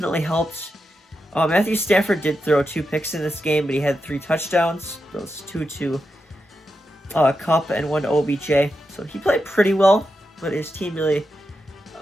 helped. Matthew Stafford did throw 2 picks in this game, but he had 3 touchdowns. Those 2 to Kupp and 1 to OBJ. So he played pretty well, but his team really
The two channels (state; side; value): normal; both; correlation 0.87